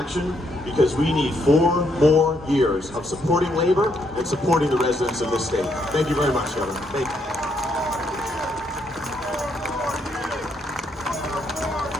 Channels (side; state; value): both; normal; correlation 0.74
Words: because we need 4 more years of supporting labor and supporting the residents of this state. Thank you very much, Governor. Thank you.